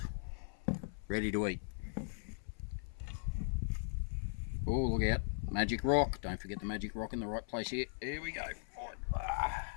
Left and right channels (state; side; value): silent; right; 52 dB below the other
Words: ready to eat. Oh, look out. Magic rock. Don't forget the magic rock in the right place here. Here we go.